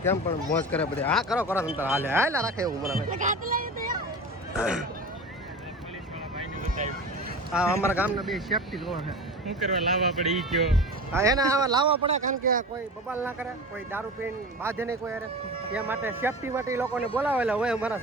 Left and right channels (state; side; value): normal; both; correlation 0.31